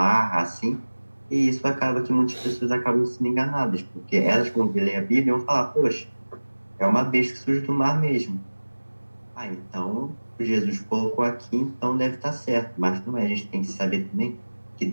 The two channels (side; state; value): both; inverted; correlation -1.00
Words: assim. E isso acaba que muitas pessoas acabam sendo enganadas, porque elas, quando lerem a Bíblia, vão falar: poxa, é uma besta que surge do mar mesmo. Ah, então Jesus colocou aqui, então deve estar certo. Mas não é, a gente tem que saber também que